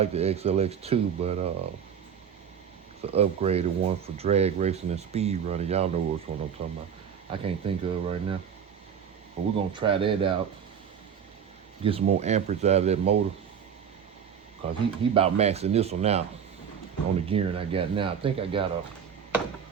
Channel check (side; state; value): left; quieter; 7.8 dB